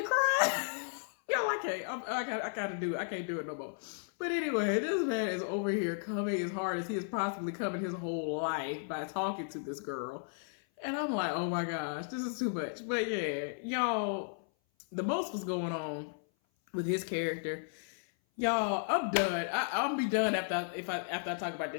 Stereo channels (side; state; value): right; silent; 55 dB below the other